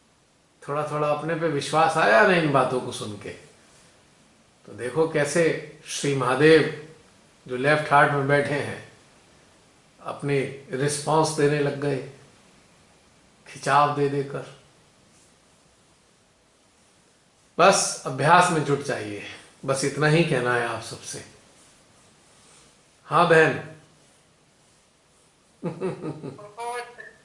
थोड़ा थोड़ा अपने पे विश्वास आया ना इन बातों को सुन के। तो देखो कैसे श्री महादेव जो लेफ्ट हार्ट में बैठे हैं अपनी रिस्पांस देने लग गए, खिंचाव दे देकर। बस अभ्यास में जुट जाइए, बस इतना ही कहना है आप सबसे। हाँ बहन। बहुत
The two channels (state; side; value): identical; both; correlation 1.00